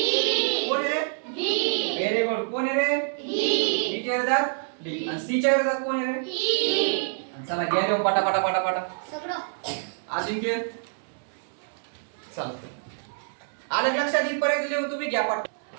कोण आहे रे? बी. Very good. कोण आहे रे? बी च्या विरोधात डी. आणि सी च्या विरोधात कोण आहे रे? ई. चला घ्या देऊ पटा पटा पटा पटा सगळं. अजिंक्य चालतंय, आलं लक्षात? इथपर्यंत लिहून तुम्ही घ्या पाठ.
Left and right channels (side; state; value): left; silent; digital silence